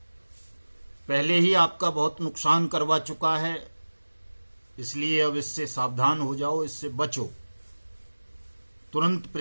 पहले ही आपका बहुत नुकसान करवा चुका है, इसलिए अब इससे सावधान हो जाओ, इससे बचो। तुरंत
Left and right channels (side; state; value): both; inverted; correlation -1.00